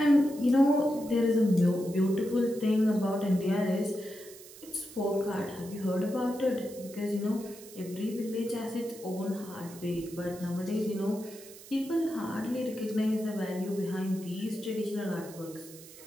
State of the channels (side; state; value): right; noise; hiss, 18 dB below the sound